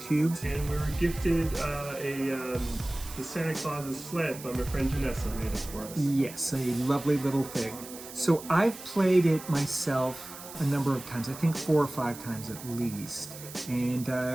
And we were gifted the Santa Claus's sled by my friend Janessa made it for us. Yes, a lovely little thing. So I've played it myself a number of times, I think 4 or 5 times at least. And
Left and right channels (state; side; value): noise; right; hiss, 14 dB below the sound